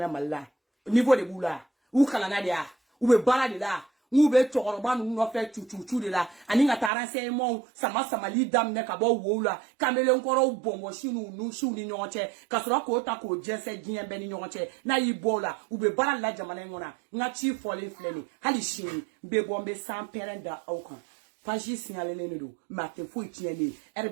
niveau de boula ou kala na dia ou be bala de la ou be tokoroba nu no fe chuchu de la ani nga taranse mo sama li dam ne ka bo wola kamele nkoro bombo shinu nu shu ni nyonche kasura ko ta ko jese gien be ni nyonche na ibola ou be bala la jamana ngona nga chi fole fleni hali shini be bombe sans perenda aukan Faji signalé ne do mate fo tieni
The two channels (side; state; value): left; drops out; at 6.9 s